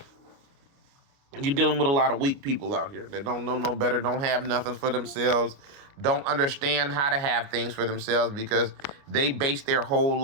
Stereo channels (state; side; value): late; left; 29 ms